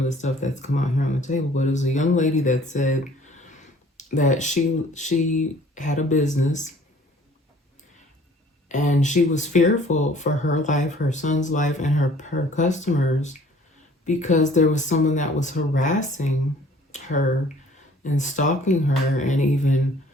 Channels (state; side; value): normal; both; correlation 0.54